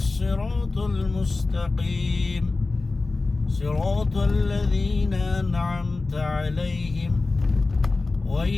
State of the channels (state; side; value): quieter; right; 3.6 dB